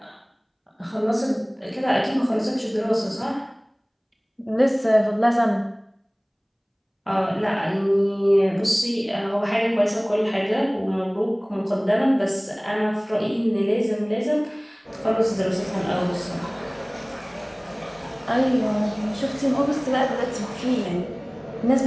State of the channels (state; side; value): identical; both; correlation 1.00